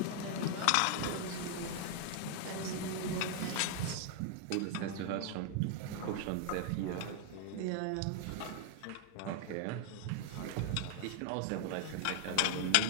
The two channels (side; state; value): both; different; correlation 0.00